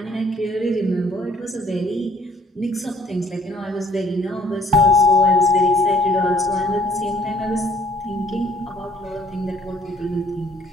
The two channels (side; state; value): both; normal; correlation 0.60